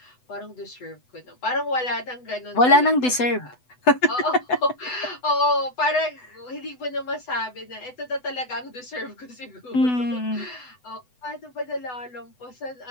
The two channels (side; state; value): right; late; 8.0 ms